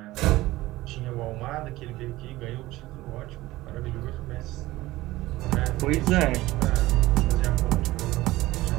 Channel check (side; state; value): left; quieter; 17.9 dB